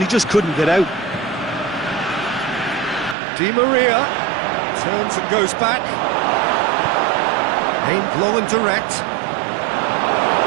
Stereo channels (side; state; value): left; drops out; at 3.2 s